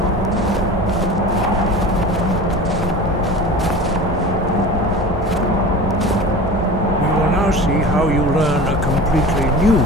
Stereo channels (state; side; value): normal; both; correlation 0.35